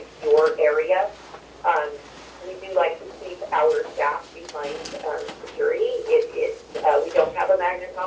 area. We do like to keep our staff behind security. We don't have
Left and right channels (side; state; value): both; identical; correlation 1.00